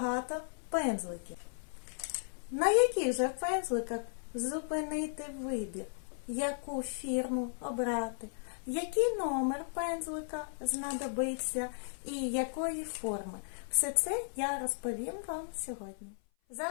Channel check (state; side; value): silent; right; 54 dB below the other